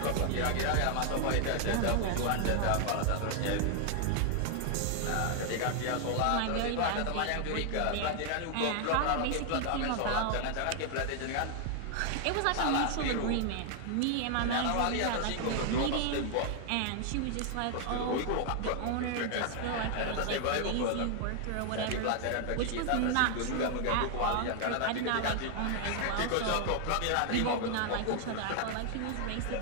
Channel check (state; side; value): different; both; correlation 0.00